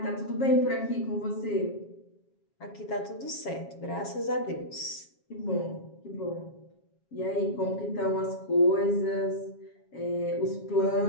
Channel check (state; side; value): late; right; 7.3 ms